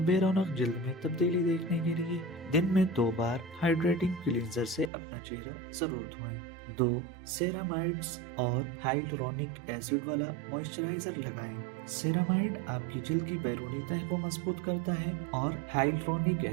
رونق جلد میں تبدیلی دیکھنے کے لیے دن میں 2 بار ہائیڈریٹنگ کلینزر سے اپنا چہرہ ضرور دھوئیں۔ 2. سیرامائڈز اور ہائلورونک ایسڈ والا موئسچرائزر لگائیں۔ سیرامائڈ آپ کی جلد کی بیرونی تہہ کو مضبوط کرتا ہے اور ہائلورونک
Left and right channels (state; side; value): drops out; left; at 4.9 s